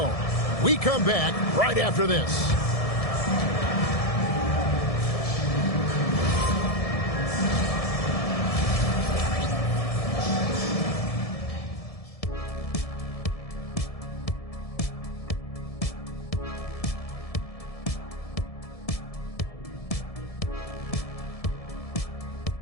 We come back right after this.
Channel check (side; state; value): right; late; 1.7 ms